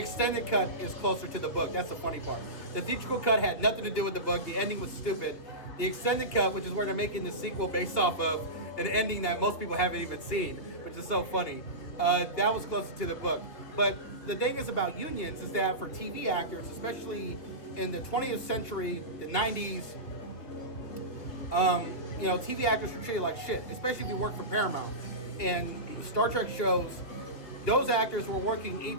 cut is closer to the book. That's the funny part. The theatrical cut had nothing to do with the book. The ending was stupid. The extended cut, which is where they're making the sequel based off of an ending that most people haven't even seen, which is so funny, that was closer to the book. But the thing is about unions is that for TV actors, especially in the 20th century, the 90s, TV actors were treated like shit, especially if you work for Paramount. And Star Trek shows, those actors were working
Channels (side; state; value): right; late; 3.0 ms